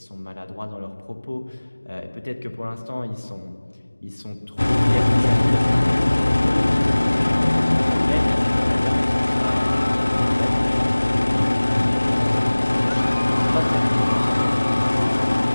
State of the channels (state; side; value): inverted; both; correlation -1.00